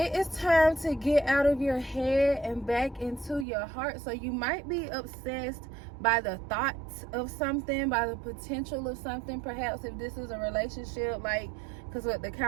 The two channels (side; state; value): left; drops out; at 3.5 s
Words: is time to get out of your head and back into your heart. So you might be obsessed by the thoughts of something, by the potential of something. Perhaps if this is a relationship, like, because what the